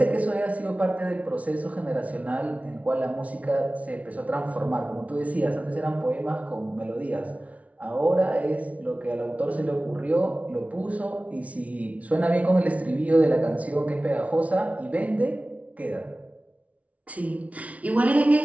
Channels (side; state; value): left; late; 0.067 ms